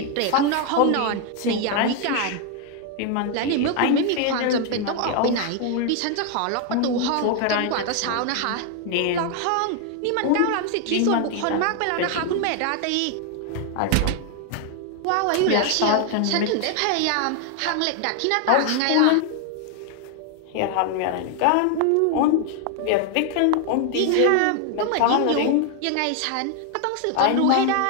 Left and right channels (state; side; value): different; both; correlation 0.00